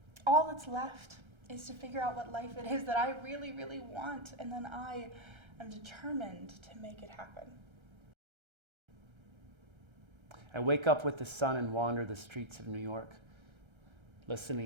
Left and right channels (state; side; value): late; left; 1.3 ms